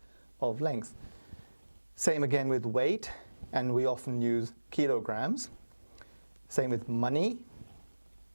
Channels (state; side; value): inverted; both; correlation -1.00